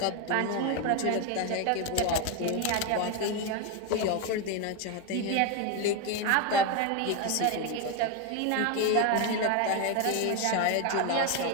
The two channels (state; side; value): different; both; correlation 0.02